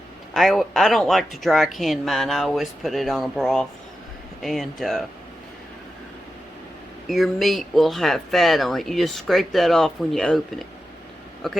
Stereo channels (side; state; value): both; normal; correlation 0.90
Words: I don't like to dry can mine. I always put it on a broth. And your meat will have fat on it. You just scrape that off when you open it.